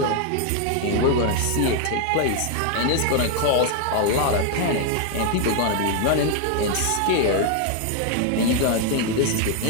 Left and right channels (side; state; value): both; different; correlation 0.01